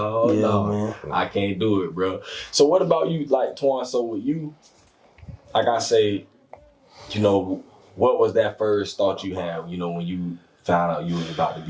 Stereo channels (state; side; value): identical; both; correlation 1.00